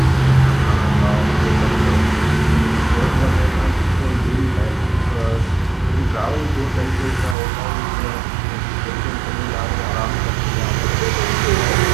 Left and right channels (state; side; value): drops out; left; at 7.4 s